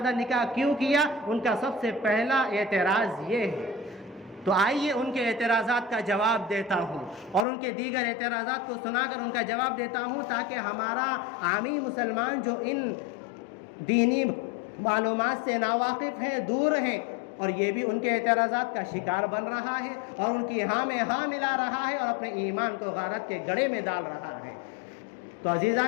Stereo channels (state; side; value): drops out; right; at 7.5 s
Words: نکاح کیوں کیا؟ ان کا سب سے پہلا اعتراض یہ ہے۔ تو آئیے ان کے اعتراضات کا جواب دیتا ہوں اور ان کے دیگر اعتراضات کو سنا کر ان کا جواب دیتا ہوں، تاکہ ہمارا عامی مسلمان جو ان دینی معلومات سے ناواقف ہیں، دور ہیں، اور یہ بھی ان کے اعتراضات کا شکار بن رہا ہے اور ان کی ہاں میں ہاں ملا رہا ہے اور اپنے ایمان کو غارت کے گڑھے میں ڈال رہا ہے۔ تو